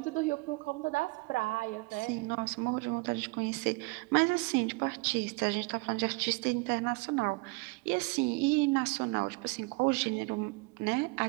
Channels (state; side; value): quieter; left; 27.0 dB